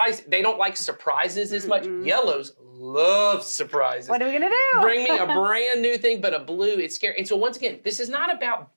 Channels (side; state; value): both; inverted; correlation -1.00